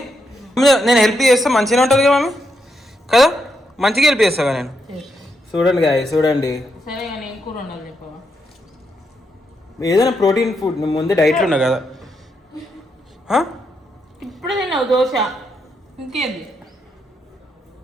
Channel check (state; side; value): normal; both; correlation 0.81